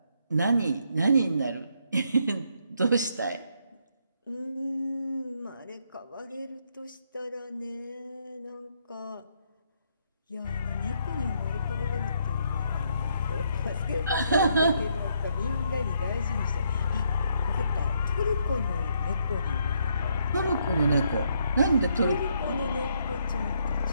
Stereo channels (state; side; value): inverted; both; correlation -0.73